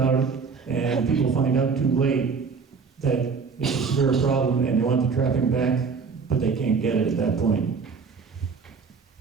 it, and people find out too late that it's a severe problem and they want the trapping back, but they can't get it at that point.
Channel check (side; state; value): left; quieter; 5.3 dB